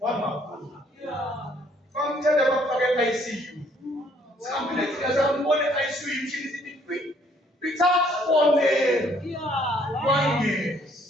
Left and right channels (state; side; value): normal; both; correlation 0.64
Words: more. Come tell them what I see you. Some places as one I see you, she is in the it's up for me. 1 year.